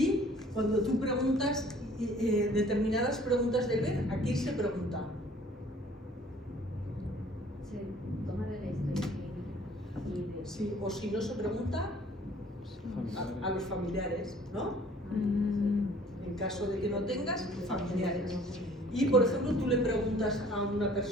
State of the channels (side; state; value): both; normal; correlation 0.54